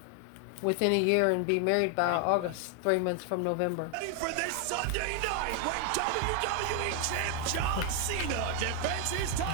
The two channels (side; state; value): both; different; correlation 0.00